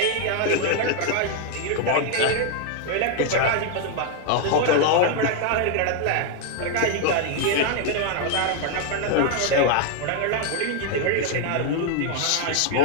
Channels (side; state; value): both; different; correlation 0.00